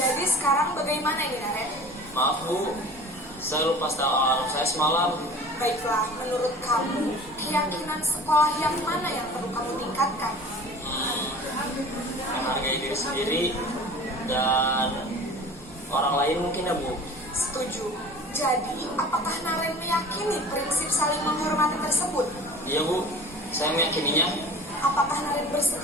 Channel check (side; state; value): both; normal; correlation 0.41